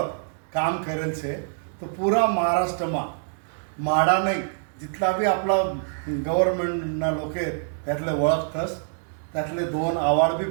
काम करेल छे. तो पुरा महाराष्ट्रमा माडा नाही जिथला बी आपला गव्हर्नमेंटना लोक आहेत त्यातले ओळखतस. त्यातले 2 अवॉर्ड बी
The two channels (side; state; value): left; silent; digital silence